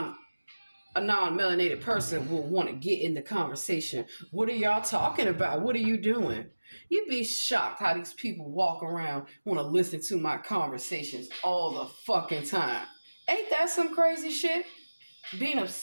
person will want to get in the conversation. What are y'all talking about? What are you doing? You'd be shocked how these people walk around, want to listen to my conversations all the fucking time. Ain't that some crazy shit? Being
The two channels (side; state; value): both; inverted; correlation -1.00